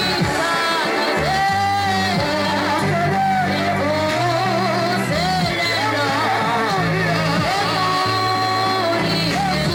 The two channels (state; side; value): identical; both; correlation 1.00